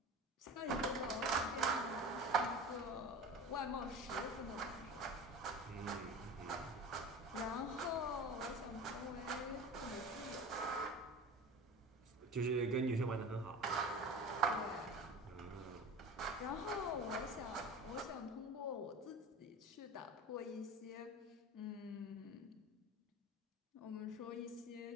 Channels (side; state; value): both; normal; correlation 0.34